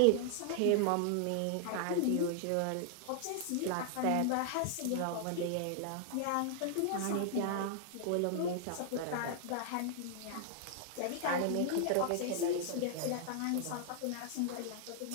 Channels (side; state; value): both; different; correlation -0.01